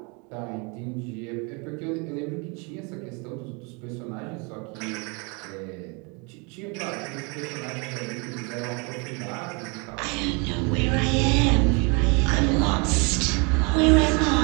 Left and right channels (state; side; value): quieter; left; 31.0 dB